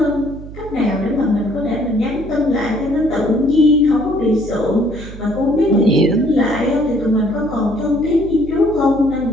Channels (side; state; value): right; noise; hum, 14 dB below the sound